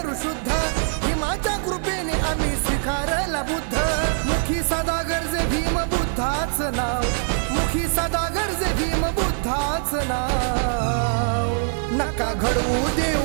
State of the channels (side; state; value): left; silent; digital silence